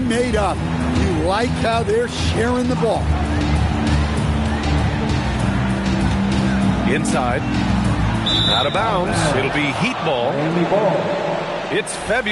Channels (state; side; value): identical; both; correlation 1.00